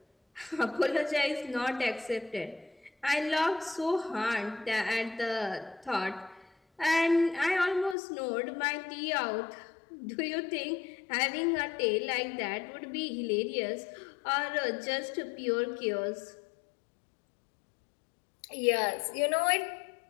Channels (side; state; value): right; drops out; at 8.0 s